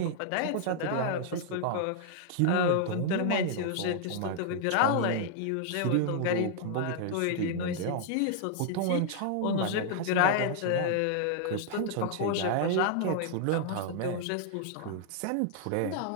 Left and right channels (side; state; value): both; different; correlation -0.01